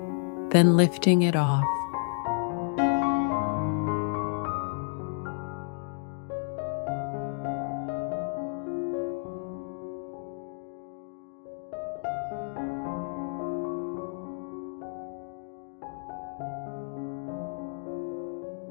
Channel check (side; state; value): right; silent; 56 dB below the other